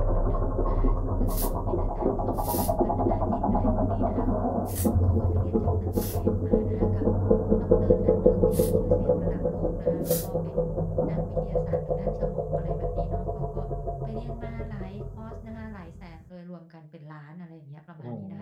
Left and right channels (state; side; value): identical; both; correlation 1.00